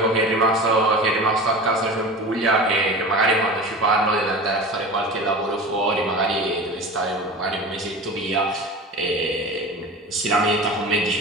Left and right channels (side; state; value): both; normal; correlation 0.33